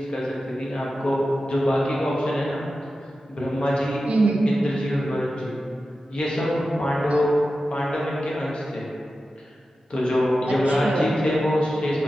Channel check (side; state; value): both; normal; correlation 0.92